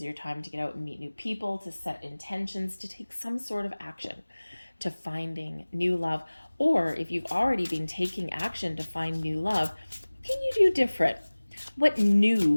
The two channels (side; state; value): both; inverted; correlation -1.00